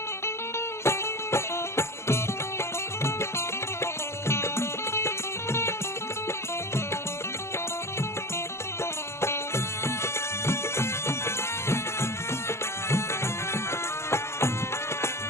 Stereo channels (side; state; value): right; late; 0.13 ms